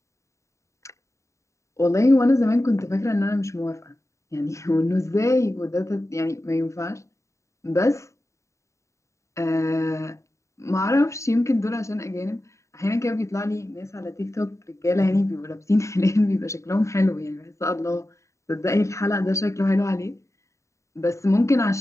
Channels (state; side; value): late; right; 0.14 ms